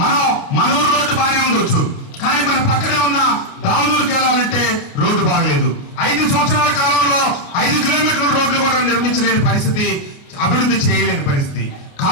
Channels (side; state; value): right; late; 28 ms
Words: ఊరు రోడ్డు బాగానే ఉండొచ్చు, కానీ మన పక్కనే ఉన్న దాములూరుకి వెళ్ళాలంటే రోడ్డు బాగలేదు. 5 సంవత్సరాల కాలంలో 5 కిలోమీటర్ల రోడ్లు కూడా నిర్మించలేని పరిస్థితి, అభివృద్ధి చేయలేని పరిస్థితి.